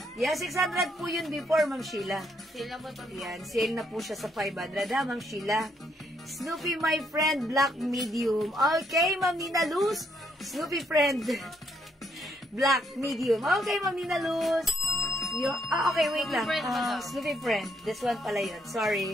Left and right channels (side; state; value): both; normal; correlation 0.73